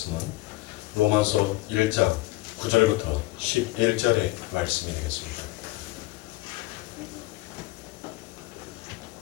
로마서 1장 9절부터 11절의 말씀이 되겠습니다.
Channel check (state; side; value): quieter; right; 18.8 dB